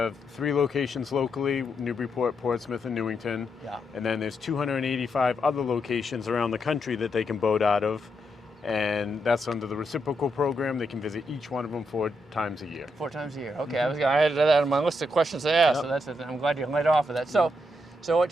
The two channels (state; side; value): normal; both; correlation 0.81